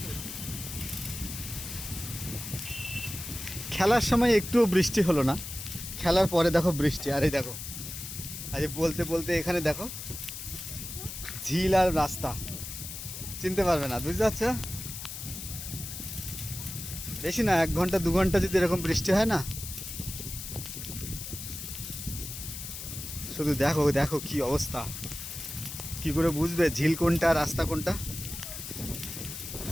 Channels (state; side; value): noise; left; hiss, 8 dB below the sound